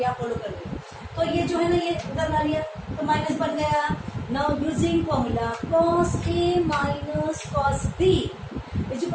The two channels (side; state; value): both; identical; correlation 1.00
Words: फॉलो कर लिया। तो ये जो है ना, ये उधर ला लिया तो माइनस बन गया। Now using formula cos a minus cos b is